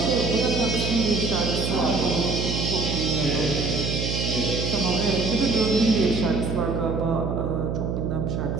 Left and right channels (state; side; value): noise; right; hum, 2 dB below the sound